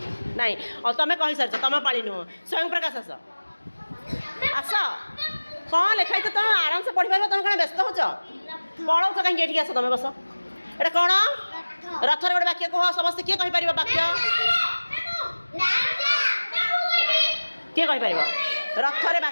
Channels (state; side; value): inverted; both; correlation -1.00